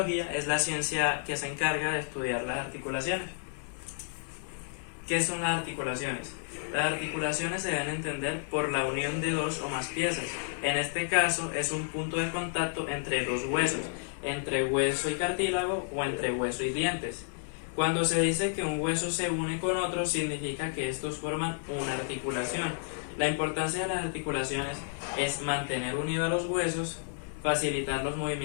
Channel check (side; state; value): right; silent; digital silence